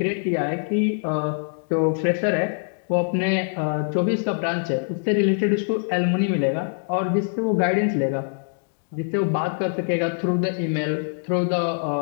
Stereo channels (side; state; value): right; silent; digital silence